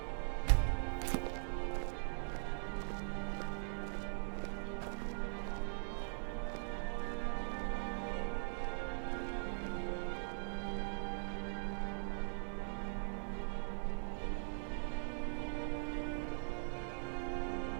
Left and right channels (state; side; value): silent; left; digital silence